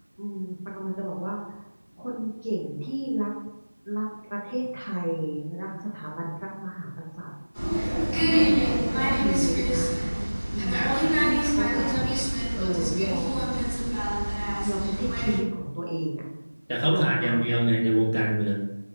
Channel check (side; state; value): both; inverted; correlation -1.00